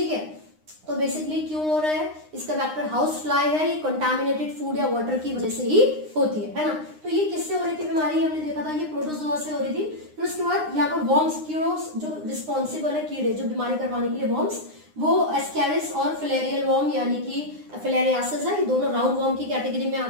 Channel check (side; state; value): left; late; 9.7 ms